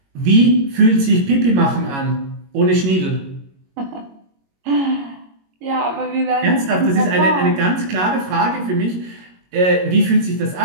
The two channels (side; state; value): left; late; 22 ms